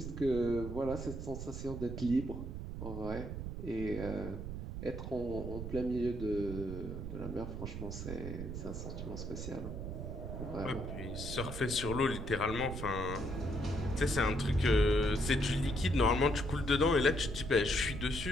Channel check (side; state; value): right; noise; rumble, 6 dB below the sound